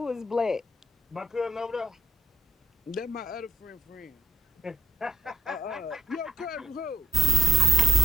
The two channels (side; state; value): both; normal; correlation 0.89